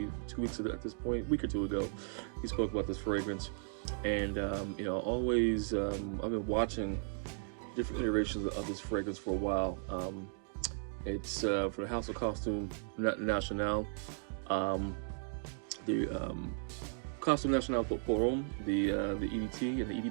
2 weeks ago at this point, a week or two ago, he spoke about this fragrance, and always I've been watching different iterations of this fragrance for a while. It's for the House of Costume National, the Costume National pour Homme, the EDT and the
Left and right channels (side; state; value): left; silent; digital silence